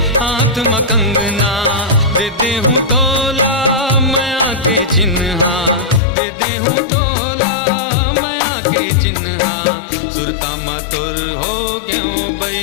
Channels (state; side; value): drops out; right; at 6.0 s